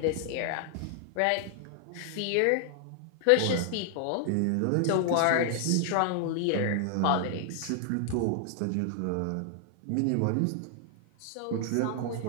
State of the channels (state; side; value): different; both; correlation 0.00